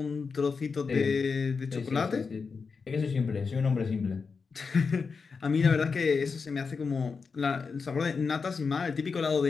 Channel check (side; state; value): right; quieter; 5.1 dB